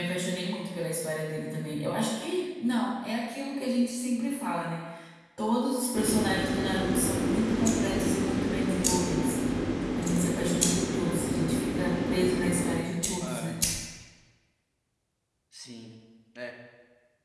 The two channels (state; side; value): identical; both; correlation 1.00